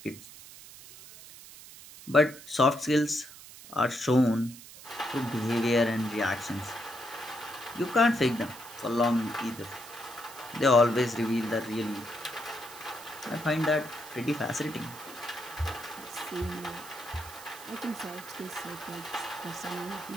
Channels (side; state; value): right; noise; hiss, 17 dB below the sound